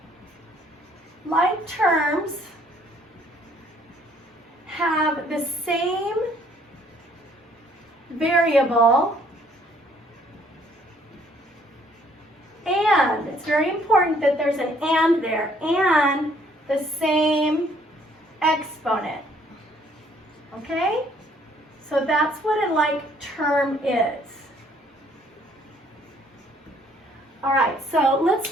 Like terms have the same variable and, it's very important that there's an and there, and the same exponent, okay? So that's what a like term is. All right, so let's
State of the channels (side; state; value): both; normal; correlation 0.63